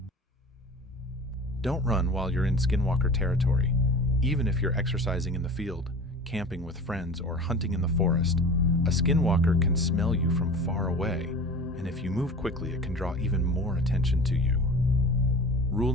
Don't run while you're in skinwalker territory. Even if you're exercising in the field, camping with friends, or hunting in the forest, a skinwalker can smell you from far away, and if you move quickly, it can draw even more attention to you. Rule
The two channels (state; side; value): normal; both; correlation 0.37